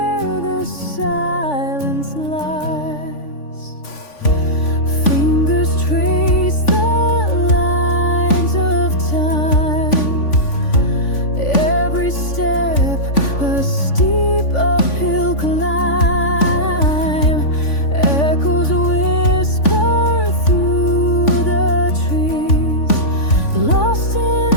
the silence lies. Fingers trace the lines of time, every step a steep uphill climb, echoes whisper through the trees, lost in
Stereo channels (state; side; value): late; right; 3.5 ms